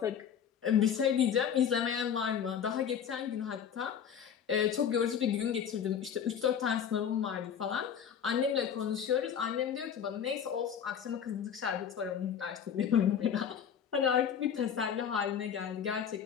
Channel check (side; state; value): right; quieter; 8.1 dB